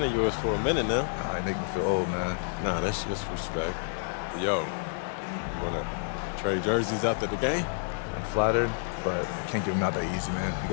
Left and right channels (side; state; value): right; silent; digital silence